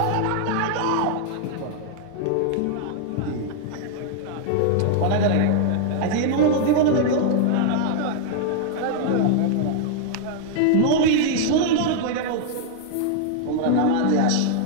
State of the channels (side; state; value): both; different; correlation 0.00